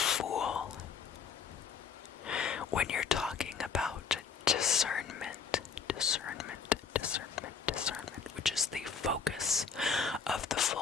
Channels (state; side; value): quieter; right; 6.1 dB